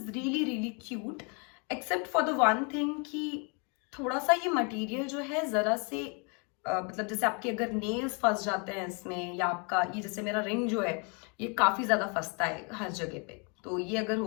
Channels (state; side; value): quieter; right; 34.9 dB